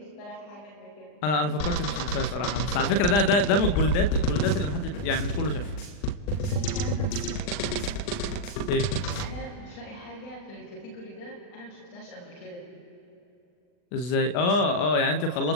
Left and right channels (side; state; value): right; late; 40 ms